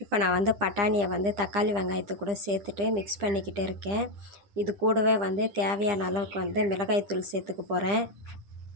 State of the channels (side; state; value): left; late; 9.9 ms